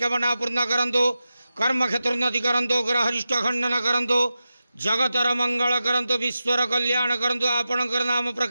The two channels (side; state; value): both; inverted; correlation -0.92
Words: पूर्ण करंतु, कर्म क्षेत्र उन्नति करंतु, ग्रह अरिष्ट खंडन करंतु, जगतर मंगल करंतु, विश्वर कल्याण करंतु, आपणकर नाम